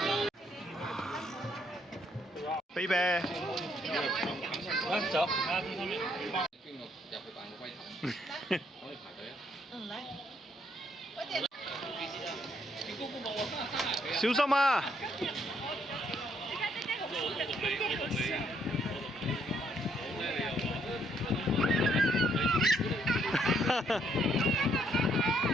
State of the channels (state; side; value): normal; both; correlation 0.70